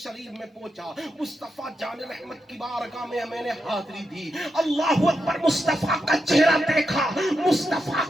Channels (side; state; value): both; normal; correlation 0.86